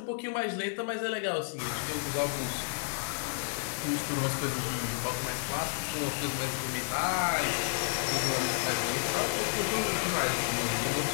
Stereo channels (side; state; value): right; silent; digital silence